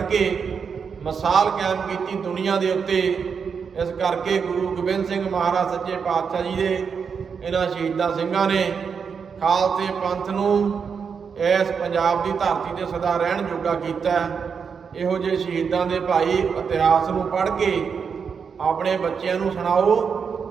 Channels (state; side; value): quieter; left; 6.2 dB